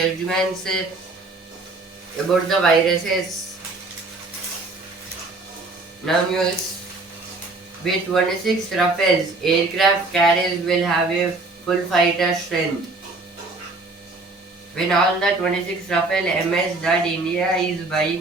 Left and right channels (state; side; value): quieter; left; 3.2 dB